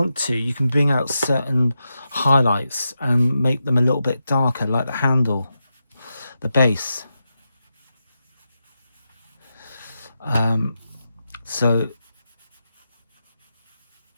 to, you can bring out certain highlights and make them a little bit darker, like the handle, the base.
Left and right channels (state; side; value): inverted; both; correlation -0.88